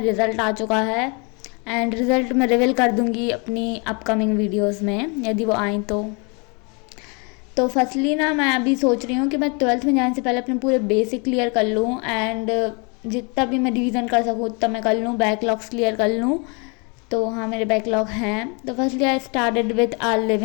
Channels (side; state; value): right; quieter; 32.8 dB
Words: रिज़ल्ट आ चुका है एंड रिज़ल्ट मैं रिवील कर दूँगी अपनी अपकमिंग वीडियोज़ में यदि वो आएँ तो फर्स्टली ना मैं अभी सोच रही हूँ कि मैं 12th में जाने से पहले अपने पूरे बेसिक क्लियर कर लूँ एंड जितना भी मैं रिवीजन कर सकूँ उतना मैं कर लूँ, बैकलॉग्स क्लियर कर लूँ। तो हाँ, मेरे बैकलॉग हैं। तो firstly I started with a